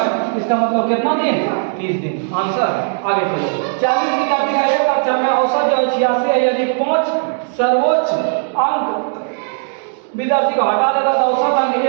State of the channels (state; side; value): silent; left; 68 dB below the other